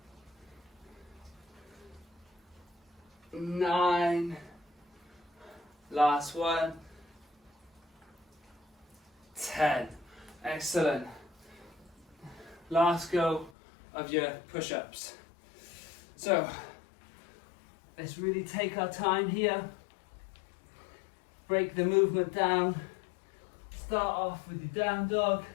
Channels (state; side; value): drops out; right; at 13.5 s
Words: 9. Last one. 10. Excellent. Last go of your push-ups. So let's really take our time here. Break the movement down. Start off with your down dog.